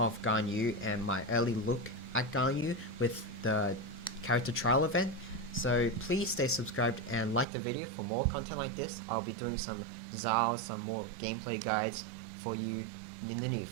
Ganyu and my early look at Ganyu with the character trial event. So please stay subscribed and like the video for more content like this. I'll be doing some Zao some more gameplay guides for you in the near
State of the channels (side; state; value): left; drops out; at 7.5 s